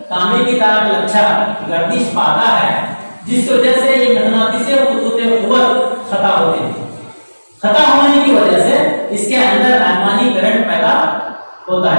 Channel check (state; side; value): inverted; both; correlation -1.00